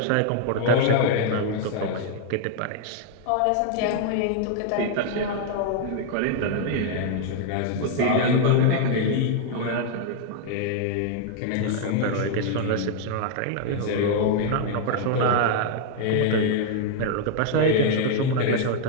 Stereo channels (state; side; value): different; both; correlation 0.00